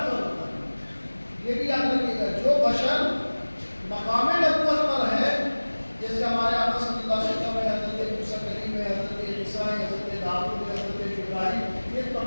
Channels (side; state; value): both; inverted; correlation -1.00